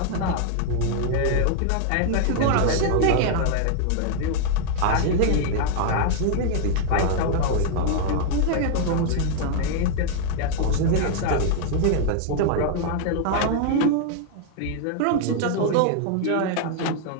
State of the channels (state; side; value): different; both; correlation 0.00